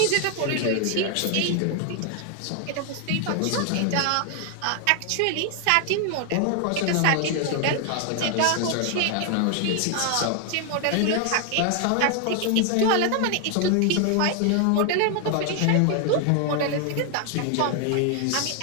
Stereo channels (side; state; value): both; different; correlation 0.00